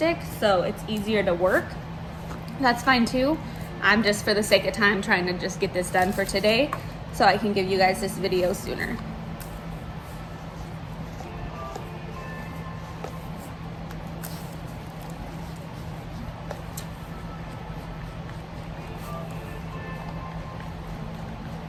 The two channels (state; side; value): identical; both; correlation 1.00